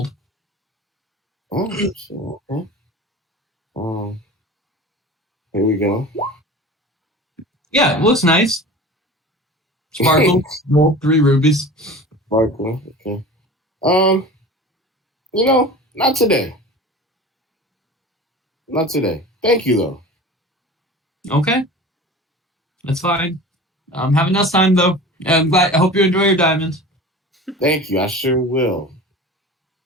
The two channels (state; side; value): normal; both; correlation 0.37